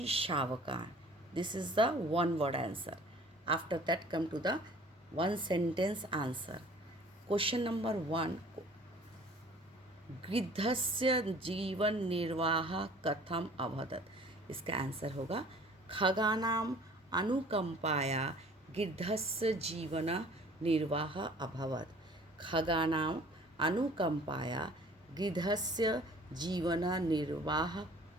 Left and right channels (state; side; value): normal; both; correlation 0.50